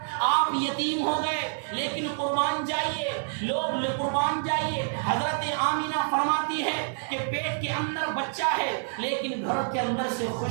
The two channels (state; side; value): silent; left; digital silence